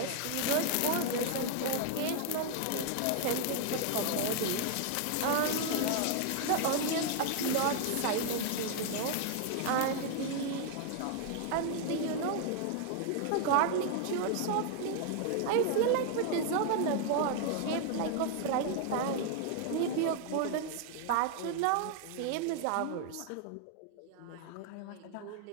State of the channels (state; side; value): different; both; correlation 0.00